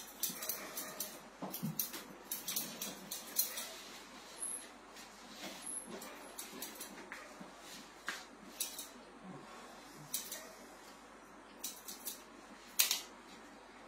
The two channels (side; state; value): both; identical; correlation 1.00